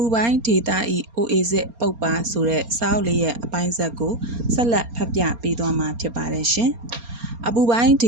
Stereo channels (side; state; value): left; late; 4.3 ms